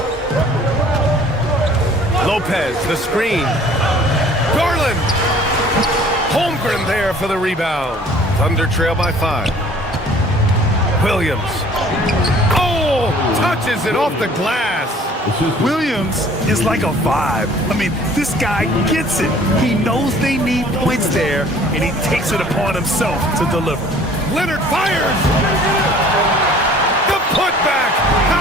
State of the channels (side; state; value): both; normal; correlation 0.52